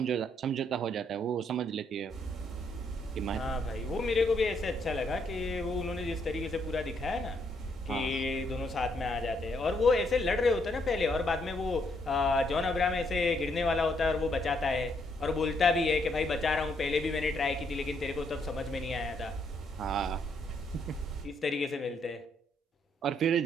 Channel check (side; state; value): both; normal; correlation 0.73